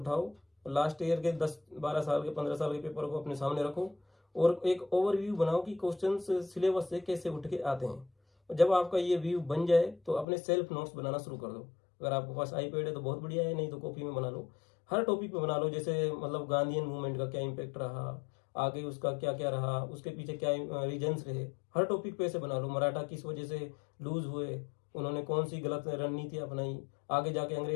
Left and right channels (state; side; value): drops out; right; at 10.2 s